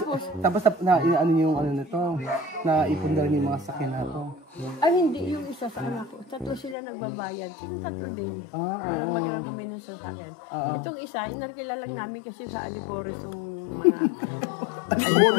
Tapos, ano yung ano nito? Na ipon na rin yung mga sakyan na to. ay hindi, yung isa sa anak ko. Tatlo sila nagbabayad. Sino tatlo din? Oo. Magkano kami ng sasakyan. Itong isa, nakilala namin kasi sa Alipores yung...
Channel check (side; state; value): right; drops out; at 6.8 s